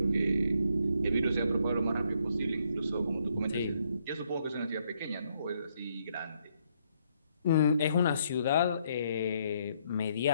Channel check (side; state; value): both; inverted; correlation -0.72